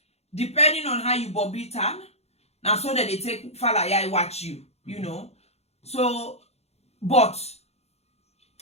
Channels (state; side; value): late; right; 0.31 ms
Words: depending on how you Bobby turn, now so that they take fala ya watch you, you know. So, but